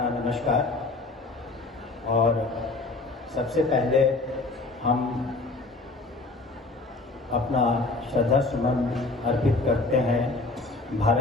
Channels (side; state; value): right; quieter; 3.3 dB